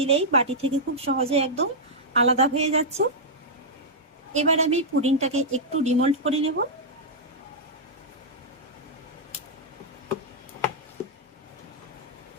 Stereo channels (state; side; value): normal; both; correlation -0.08